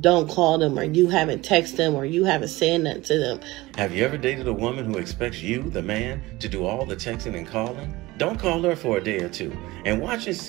don't call them, or you haven't texted them, or you haven't said nothing to them. Have you ever dated a woman who expects you, the man, to do all the texting and calling? Don't call her for a day or two and watch and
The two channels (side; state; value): left; quieter; 19.9 dB